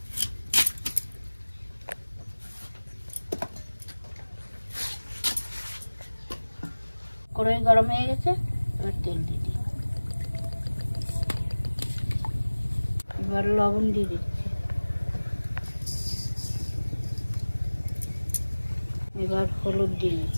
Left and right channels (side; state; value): both; inverted; correlation -1.00